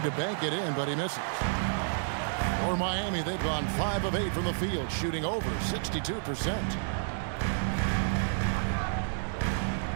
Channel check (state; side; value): silent; left; digital silence